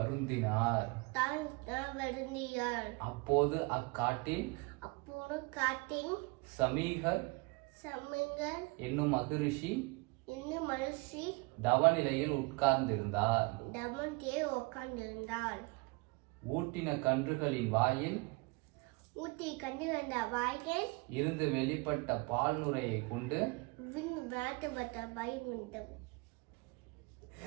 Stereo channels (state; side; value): quieter; left; 27.9 dB